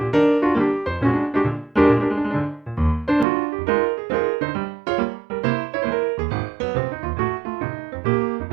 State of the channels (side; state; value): left; drops out; at 3.2 s